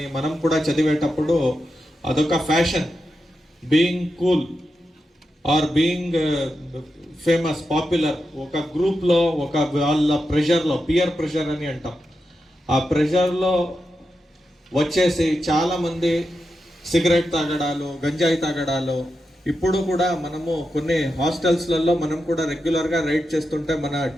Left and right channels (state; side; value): normal; both; correlation 0.88